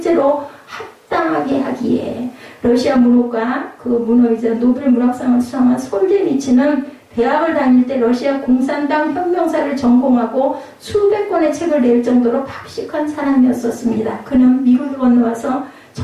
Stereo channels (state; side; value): identical; both; correlation 1.00